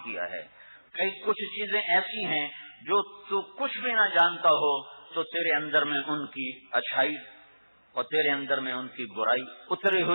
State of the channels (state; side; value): inverted; both; correlation -1.00